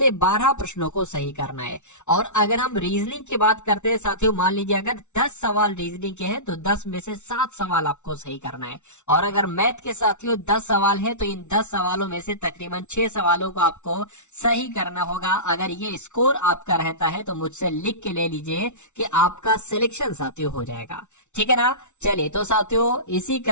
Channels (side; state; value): right; late; 0.83 ms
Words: 12 प्रश्नों को सही करना है। और अगर हम रीजनिंग की बात करते हैं साथियों, मान लीजिए अगर 10 सवाल रीजनिंग के हैं तो 10 में से 7 सवाल आपको सही करना है। और अगर मैथ के साथियों 10 सवाल है तो इन 10 सवालों में से तकरीबन 6 सवालों को आपको सही करना होगा। अगर ये स्कोर आपका रहता है तो मुझसे लिख के ले लीजिए कि आपका सिलेक्शन साथियों हो जाएगा। ठीक है ना। चलिए तो साथियों इसी